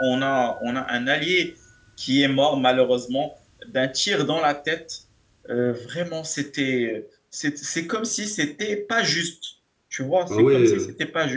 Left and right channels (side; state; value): both; identical; correlation 1.00